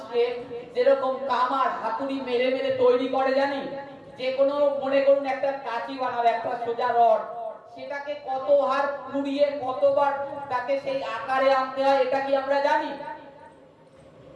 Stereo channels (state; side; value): identical; both; correlation 1.00